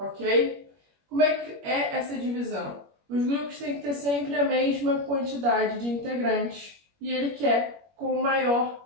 Como é que é essa divisão? Os grupos têm que ter sempre a mesma quantidade de integrantes e ele quer com o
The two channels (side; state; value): left; late; 21 ms